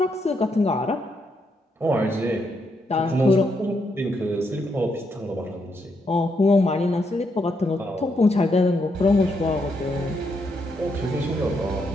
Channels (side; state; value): both; normal; correlation 0.78